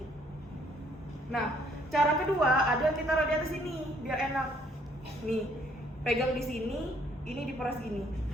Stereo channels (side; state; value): both; normal; correlation 0.65